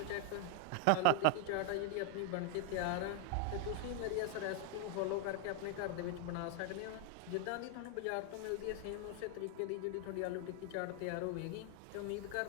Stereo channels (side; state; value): both; different; correlation 0.00